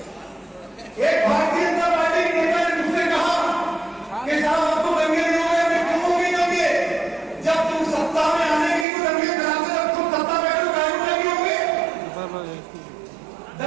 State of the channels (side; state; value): left; drops out; at 8.8 s